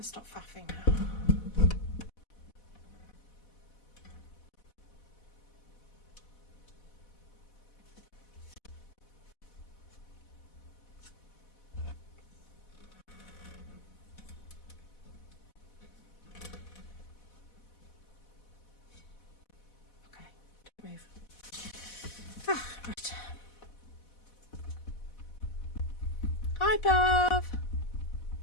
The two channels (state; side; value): late; right; 4.1 ms